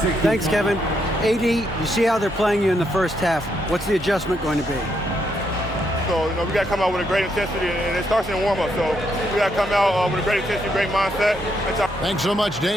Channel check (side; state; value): both; normal; correlation 0.77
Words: Thanks, Kevin. AD, you see how they're playing you in the first half. What's the adjustment going to be? So, we got to come out with a great intensity, and it starts in the warm-up. So we got to come out with a great intensity, great mindset. Thanks so much,